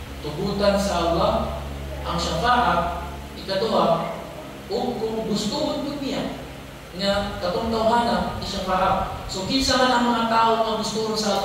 tugutan sa Allah ang syafa'a ikaduha o kung gusto mo niya nga katong tawhana isyafa'a. So kinsa man ang mga tao nga gusto sa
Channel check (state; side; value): identical; both; correlation 1.00